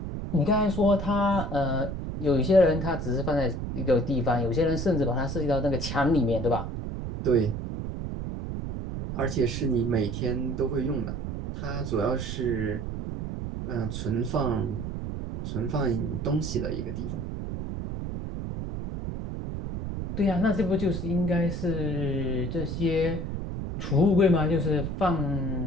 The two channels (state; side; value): noise; right; rumble, 5 dB below the sound